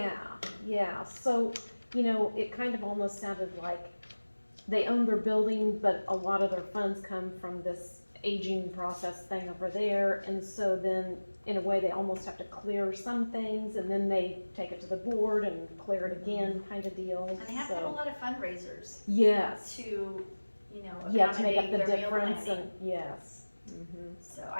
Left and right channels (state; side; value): inverted; both; correlation -1.00